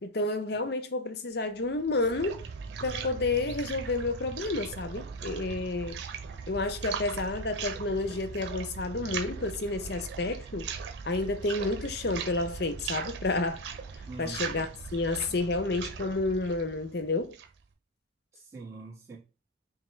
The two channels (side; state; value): both; normal; correlation 0.08